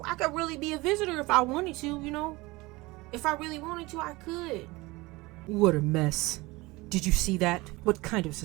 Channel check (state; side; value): quieter; left; 22.1 dB